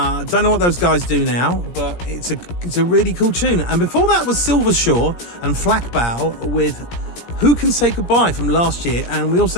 Don't know what those guys do now, but it's a really cool tune. And before that was Silvershore and Flackbow with Who Can Say Goodbye from last year. And we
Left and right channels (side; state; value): right; late; 17 ms